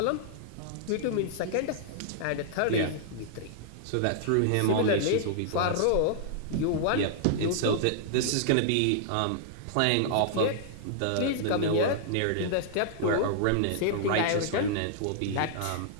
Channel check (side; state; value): both; different; correlation -0.01